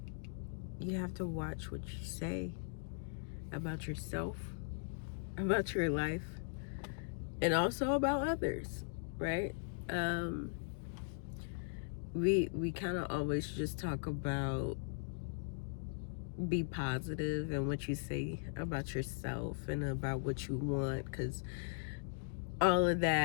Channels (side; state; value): right; silent; digital silence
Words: you have to watch what you say about yourself, about your life, and also about others, right? We kind of always just talk about be positive and what you say about yourself and about what you want, because all of